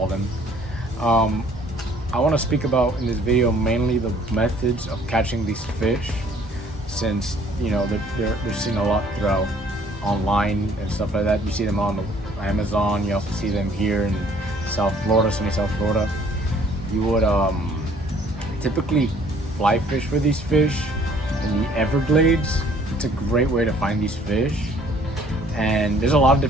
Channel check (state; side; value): normal; both; correlation 0.58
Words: them. Um, I want to speak about in this video mainly the methods of catching these fish, since you know they're seen a lot throughout online and stuff like that. You see them on the Amazon. You also see them here in South Florida, sunny South Florida. You would typically fly fish for these fish in the Everglades. It's a great way to find these fish, and there's a lot of